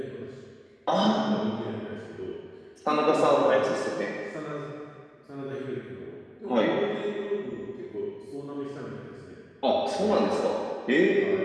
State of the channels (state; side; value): identical; both; correlation 1.00